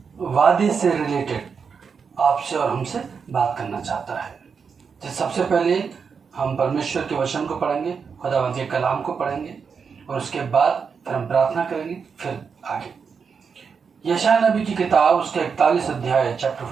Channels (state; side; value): quieter; left; 5.9 dB